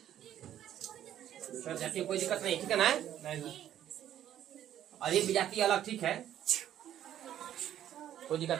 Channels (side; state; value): left; quieter; 11.3 dB